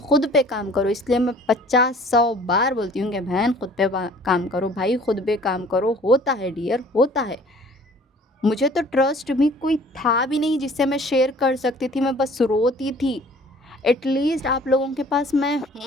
पे काम करो, इसलिए मैं 50-100 बार बोलती हूँ कि बहन खुद पे काम करो, भाई खुद पे काम करो। होता है डियर, होता है। मुझे तो ट्रस्ट भी कोई था भी नहीं जिससे मैं शेयर कर सकती थी, मैं बस रोती थी। एटलीस्ट आप लोगों के पास मैं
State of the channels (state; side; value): normal; both; correlation 0.52